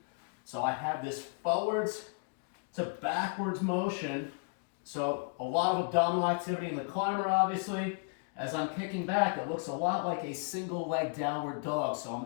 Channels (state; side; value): quieter; right; 36.1 dB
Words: So I have this forwards to backwards motion. So a lot of abdominal activity in the climber, obviously. As I'm kicking back, it looks a lot like a single leg downward dog. So I'm